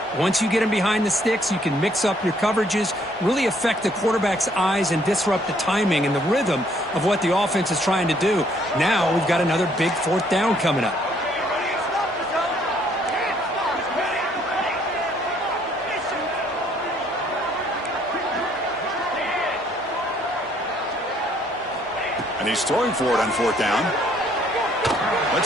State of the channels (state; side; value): normal; both; correlation 0.65